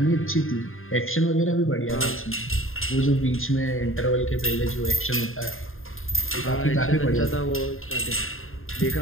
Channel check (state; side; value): late; right; 0.60 ms